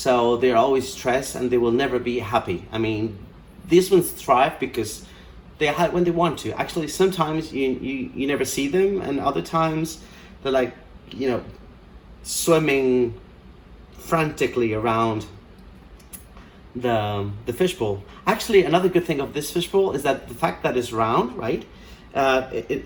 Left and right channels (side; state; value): both; identical; correlation 1.00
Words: they're always stressed and they will never be happy. I mean, these ones thrive because they hide when they want to. Actually, sometimes you never see them, and other times they're like, swimming frantically around the fishbowl. Actually, another good thing of this fishbowl is that the fact that it's round, right?